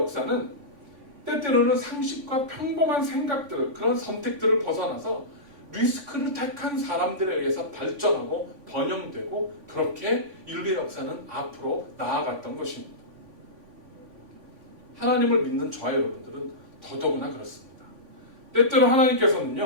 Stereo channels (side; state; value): left; late; 3.5 ms